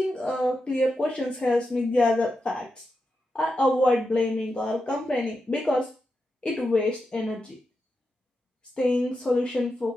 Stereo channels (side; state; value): both; normal; correlation 0.88